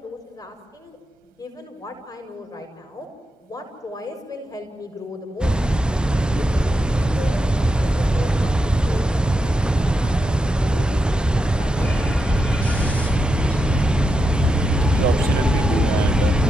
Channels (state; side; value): normal; both; correlation 0.86